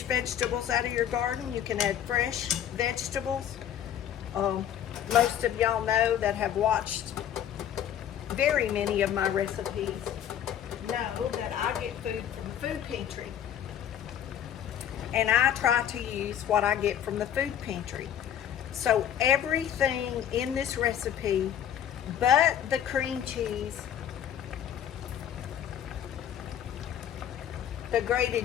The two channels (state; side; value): quieter; right; 9.9 dB